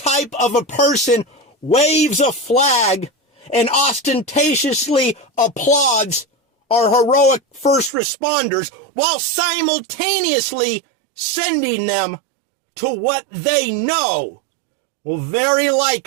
of a person waves a flag and ostentatiously applauds our heroic first responders while simultaneously sending them to what they know will very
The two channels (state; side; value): drops out; left; at 7.9 s